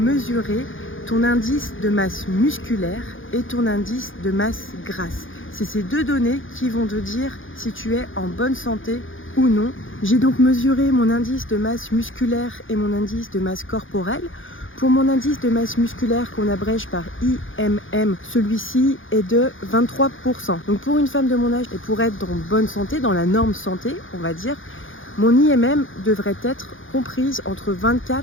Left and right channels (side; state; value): right; late; 0.58 ms